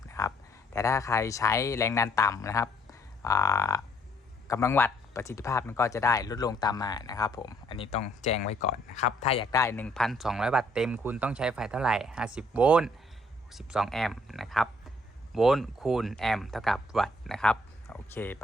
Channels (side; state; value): both; normal; correlation 0.65